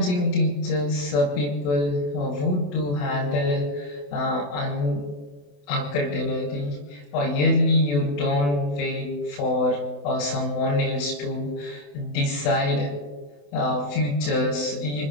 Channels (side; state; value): right; late; 28 ms